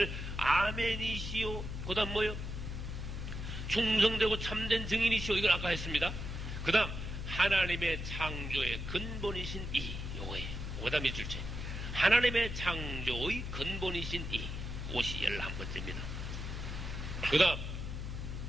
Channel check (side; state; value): left; noise; hum, 5 dB below the sound